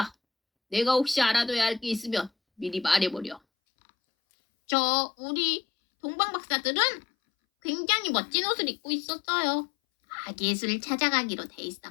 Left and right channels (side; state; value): right; drops out; at 3.4 s